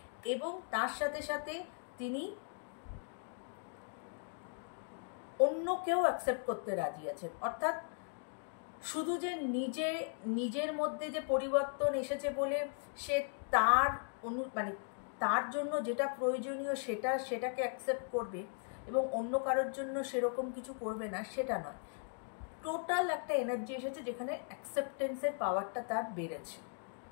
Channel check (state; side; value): silent; right; 52 dB below the other